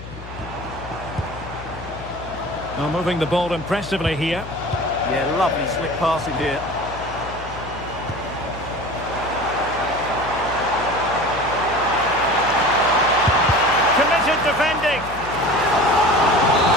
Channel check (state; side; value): noise; left; hum, 14 dB below the sound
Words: Oh, moving the ball impressively here. Yeah, lovely slick passing here. Committed defending.